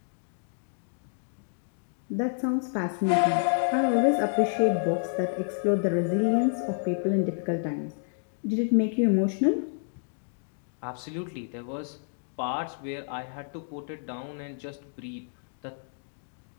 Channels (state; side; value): silent; right; digital silence